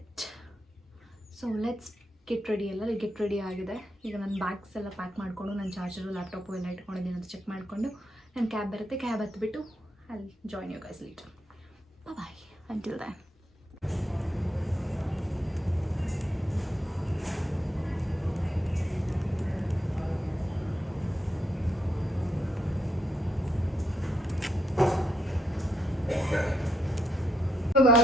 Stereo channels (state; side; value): normal; both; correlation 0.80